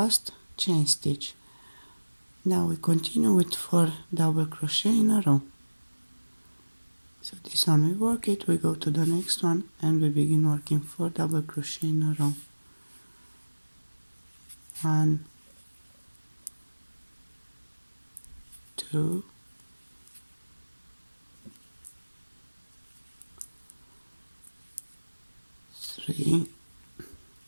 chain stitch. Now we continue with 4 double crochet in a row. So this one we work it, we go to the next one and we begin working 4 double crochet in a row. 1, 2, 3,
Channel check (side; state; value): both; inverted; correlation -1.00